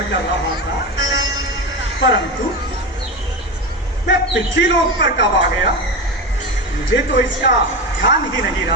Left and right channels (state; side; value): normal; both; correlation 0.21